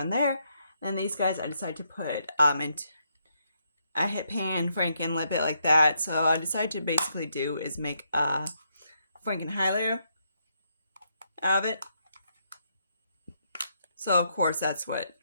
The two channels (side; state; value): both; inverted; correlation -0.77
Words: there. And these guys I decided to put into, I hit pan, Franken, lip it like that. So I decided to basically do is make a Franken highlighter out of it. So of course that's what